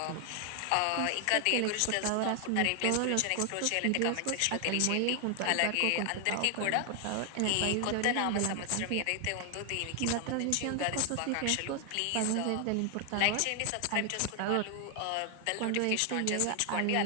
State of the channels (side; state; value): both; different; correlation 0.00